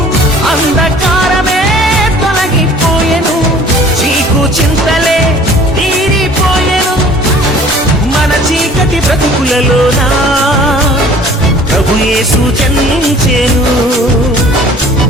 అంధకారమే తొలగిపోయెను, చీకు చింతలే తీరిపోయెను. మన చీకటి బ్రతుకులలోన ప్రభు యేసు జన్మించెను.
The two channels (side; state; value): both; normal; correlation 0.50